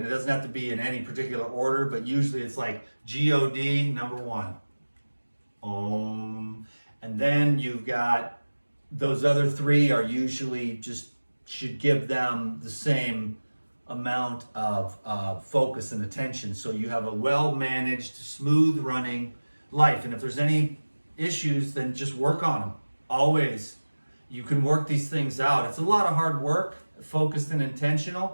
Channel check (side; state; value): both; inverted; correlation -1.00